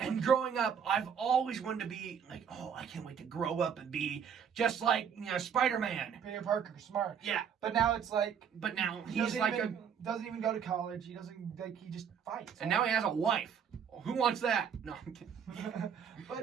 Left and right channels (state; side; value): quieter; left; 7.5 dB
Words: growing up, I've always wanted to be, like, oh, I can't wait to grow up and be just like, Spider-Man. Peter Parker, smart. Yeah. But now it's like... But now he's like doesn't even go to college. He doesn't, like, he just fights. And now he has a wife. Well, who wants that? No, I'm kidding.